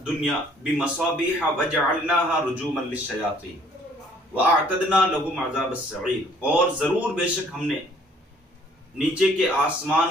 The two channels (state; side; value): normal; both; correlation 0.59